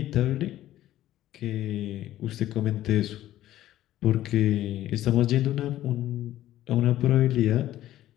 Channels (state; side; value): quieter; right; 13.7 dB